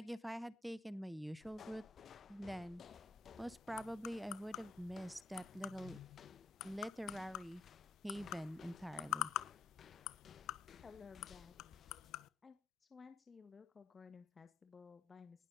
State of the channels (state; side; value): quieter; right; 3.7 dB